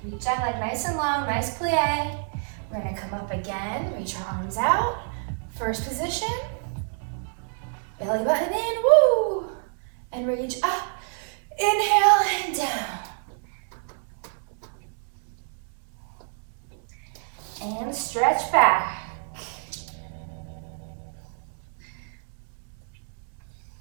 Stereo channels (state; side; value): silent; left; 60 dB below the other